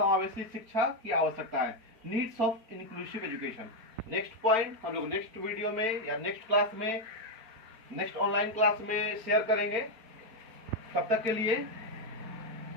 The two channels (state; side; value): late; left; 4.4 ms